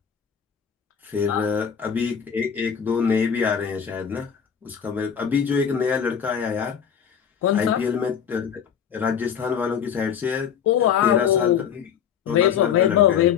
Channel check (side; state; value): right; quieter; 7.9 dB